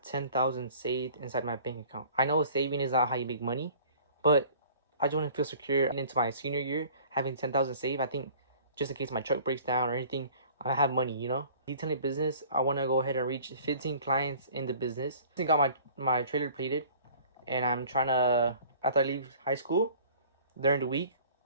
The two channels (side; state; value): both; inverted; correlation -0.48